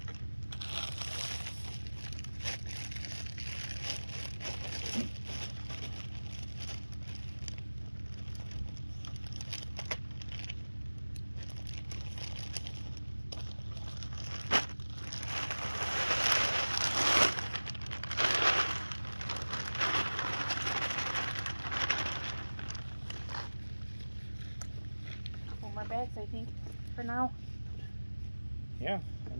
Bags, I think, for now. Yeah, I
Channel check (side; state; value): both; inverted; correlation -1.00